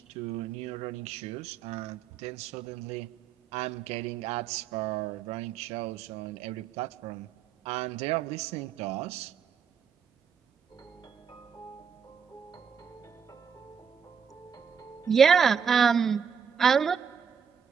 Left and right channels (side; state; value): left; quieter; 7.0 dB